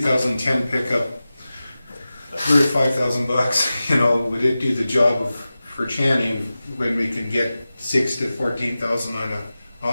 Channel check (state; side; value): inverted; both; correlation -0.95